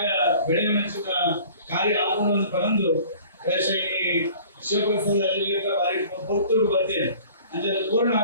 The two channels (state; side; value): inverted; both; correlation -0.48